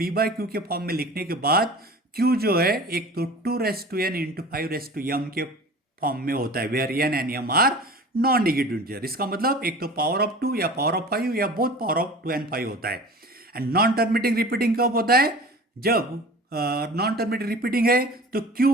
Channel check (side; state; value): both; normal; correlation 0.40